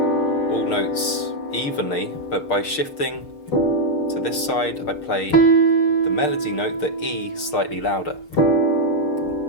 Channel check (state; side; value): late; right; 6.6 ms